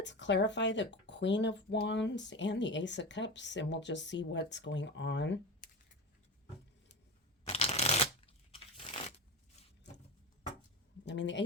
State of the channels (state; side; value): normal; both; correlation 0.24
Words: clarify the Queen of Wands and the Ace of Cups, and we'll just see what's going on. I mean, the